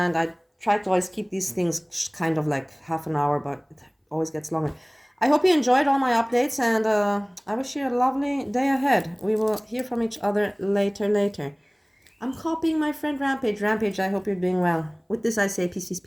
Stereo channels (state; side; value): identical; both; correlation 1.00